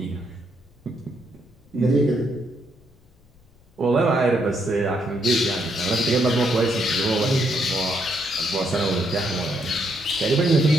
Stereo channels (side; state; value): left; noise; rumble, 30 dB below the sound